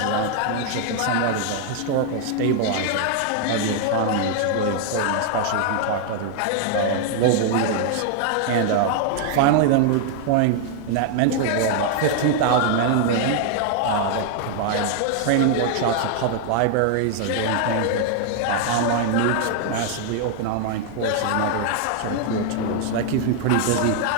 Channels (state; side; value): different; both; correlation 0.00